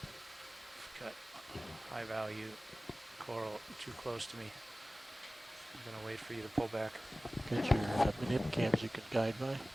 Got high value coral too close to me. I'm gonna wait for you to pull back. Get your manip cams you can guide by.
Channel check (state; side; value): normal; both; correlation 0.97